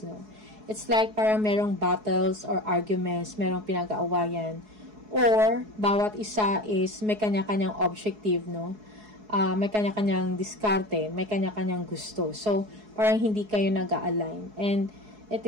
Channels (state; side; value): late; left; 4.7 ms